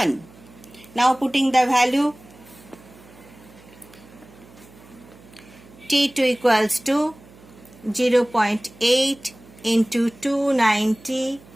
Now putting the value, T2 equals to 0.8 into 290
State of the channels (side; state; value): right; noise; hum, 23 dB below the sound